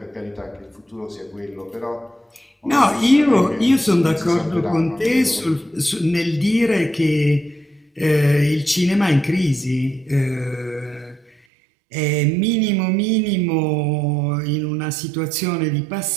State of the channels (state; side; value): drops out; left; at 11.3 s